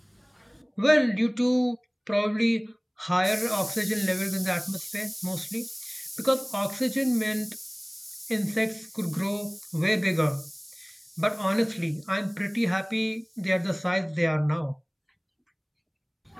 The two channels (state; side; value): identical; both; correlation 1.00